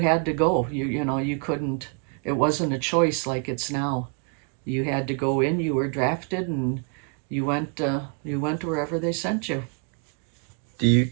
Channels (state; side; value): quieter; left; 37.3 dB